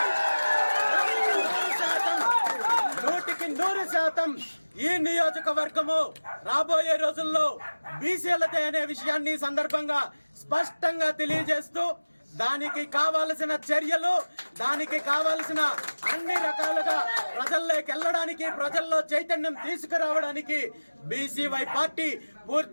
100% ఈ నియోజకవర్గము రాబోయే రోజుల్లో బీసీలదే అనే విషయాన్ని సందర్భంగా స్పష్టంగా తెలియజేస్తూ దానికి కావాల్సిన చర్యలు, దానికి కావాల్సిన అన్ని రకాలుగా ప్రజల్లోకి వెళ్ళడానికి, ప్రజల్లో చైతన్యం తీసుకురావడానికి బీసీవై పార్టీ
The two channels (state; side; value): inverted; both; correlation -1.00